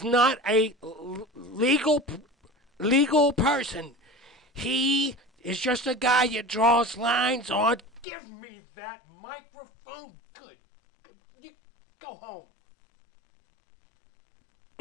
not a legal person. He is just a guy that draws lines on. Give me that microphone. Good. You go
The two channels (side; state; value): right; drops out; at 8.1 s